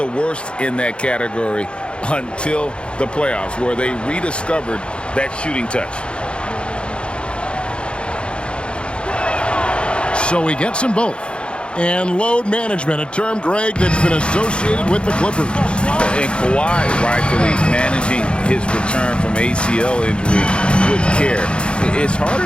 worst in that category until the playoffs, where they rediscovered that shooting touch. So he gets them both. And load management, a term, Greg, that's been associated with the Clippers. And Kawhi rightfully managing his return from ACL injury with care. It's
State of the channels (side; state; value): right; late; 0.056 ms